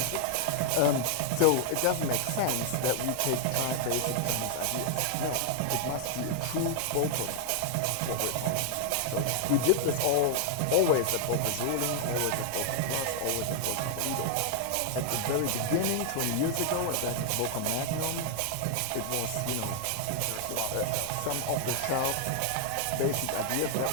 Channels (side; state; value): both; different; correlation 0.00